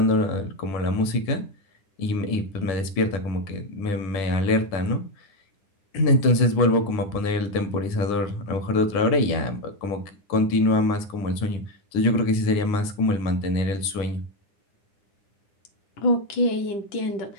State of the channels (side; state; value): right; late; 9.8 ms